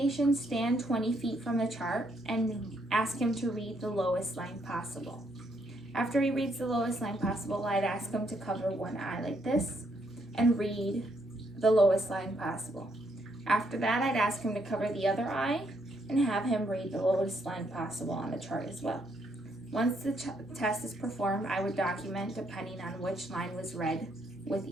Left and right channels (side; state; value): both; normal; correlation 0.73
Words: stand 20 feet from the chart and ask him to read the lowest line possible. After he reads the lowest line possible, I'd ask him to cover one eye like this and read the lowest line possible. After that, I'd ask him to cover the other eye and have him read the lowest line possible on the chart as well. Once the test is performed, I would document depending on which line was read with